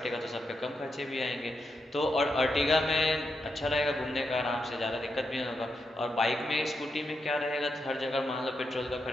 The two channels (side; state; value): both; normal; correlation 0.84